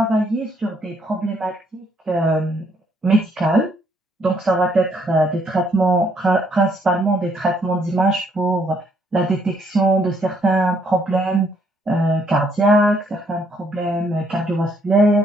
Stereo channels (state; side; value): normal; both; correlation 0.69